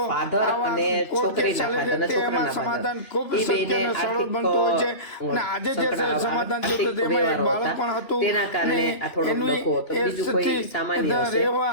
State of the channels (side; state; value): right; late; 2.9 ms